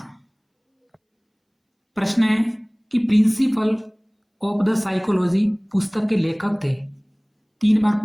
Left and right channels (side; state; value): both; identical; correlation 1.00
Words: प्रश्न है कि प्रिंसिपल ऑफ द साइकोलॉजी पुस्तक के लेखक थे। 3 बार